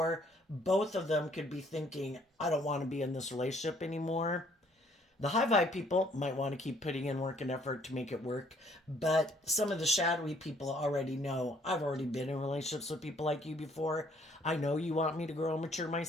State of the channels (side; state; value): both; normal; correlation 0.62